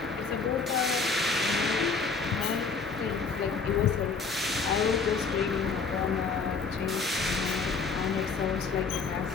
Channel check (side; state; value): right; quieter; 4.9 dB